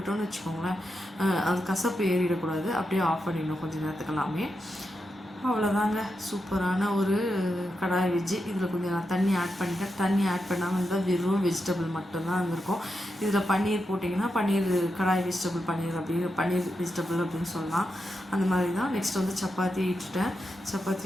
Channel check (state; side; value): normal; both; correlation 0.87